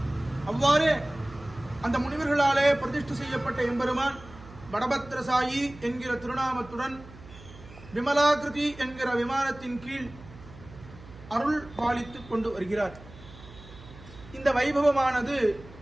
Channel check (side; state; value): right; noise; hum, 19 dB below the sound